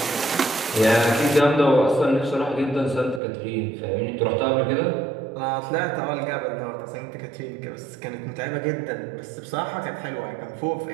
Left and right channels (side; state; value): left; drops out; at 3.2 s